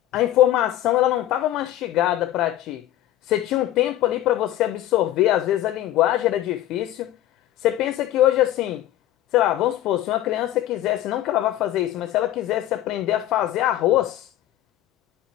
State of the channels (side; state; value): right; quieter; 13.4 dB